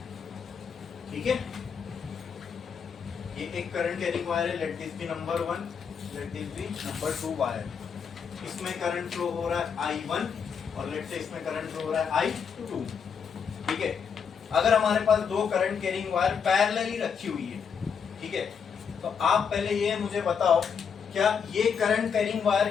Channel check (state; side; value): quieter; right; 6.7 dB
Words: ठीक है, ये एक करंट कैरिंग वायर है, let this be number 1, let this be number 2 wire. इसमें करंट फ्लो हो रहा है I1 और लेट से इसमें करंट फ्लो हो रहा है I2। ठीक है, अगर हमारे पास दो करंट कैरिंग वायर पैरेलली रखी हुई है, ठीक है, तो आप पहले ये मुझे बताओ, क्या ये करंट कैरिंग